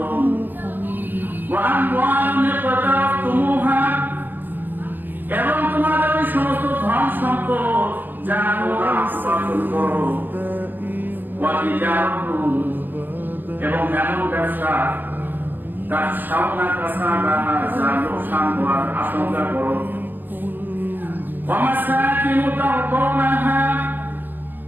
وأموال اقترفتموها এবং তোমাদের ওই সমস্ত ধন সম্পদ যা তোমরা উপার্জন করো এবং এমন ব্যবসা তার সামনা কাছা যা লোকসান হওয়ার আশঙ্কা করো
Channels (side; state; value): left; late; 0.090 ms